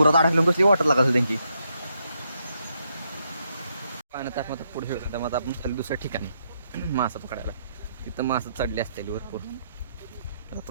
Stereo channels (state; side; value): inverted; both; correlation -0.78